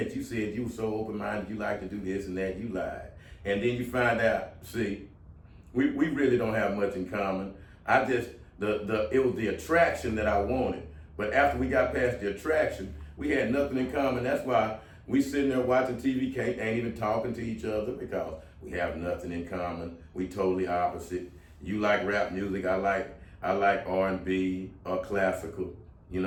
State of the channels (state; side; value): identical; both; correlation 1.00